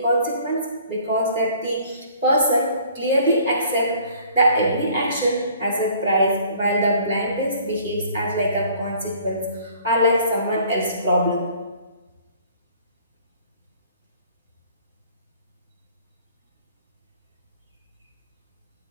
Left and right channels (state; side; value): inverted; both; correlation -0.55